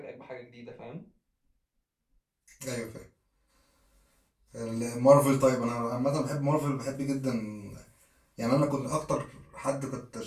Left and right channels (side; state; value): both; identical; correlation 1.00